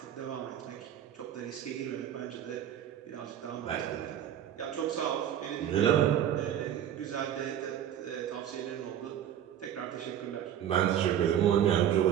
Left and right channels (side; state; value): left; quieter; 10.3 dB